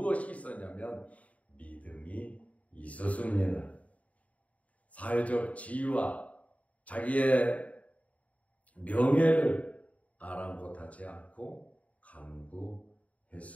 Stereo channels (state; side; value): late; right; 0.068 ms